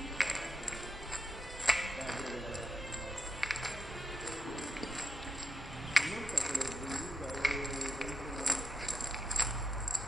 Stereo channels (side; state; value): both; normal; correlation 0.85